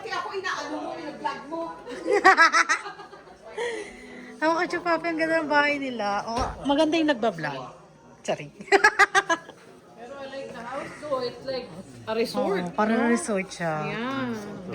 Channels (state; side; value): identical; both; correlation 1.00